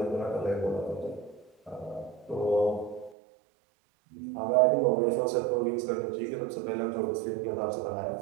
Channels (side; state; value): left; drops out; at 3.2 s